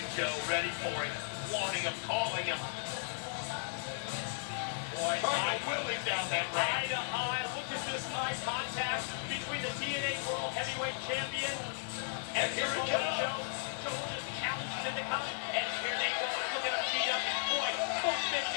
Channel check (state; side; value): silent; right; digital silence